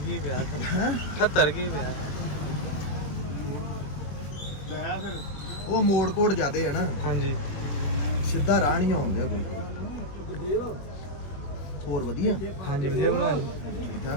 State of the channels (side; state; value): right; late; 21 ms